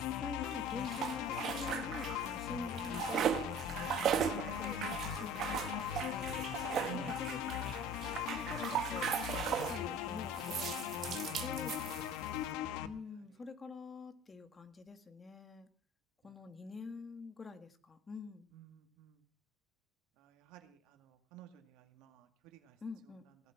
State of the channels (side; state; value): both; normal; correlation 0.44